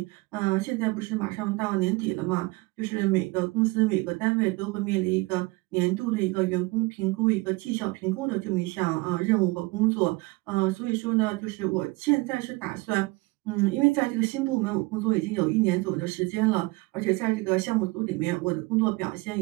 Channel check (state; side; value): quieter; left; 23.7 dB